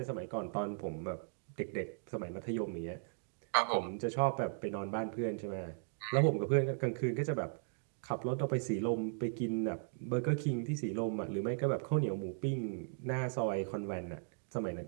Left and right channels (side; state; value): left; silent; digital silence